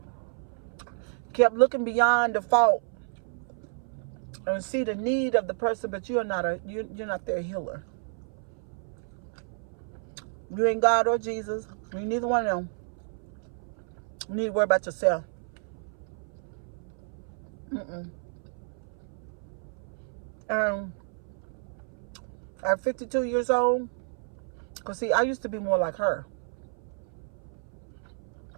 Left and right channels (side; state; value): left; silent; 58 dB below the other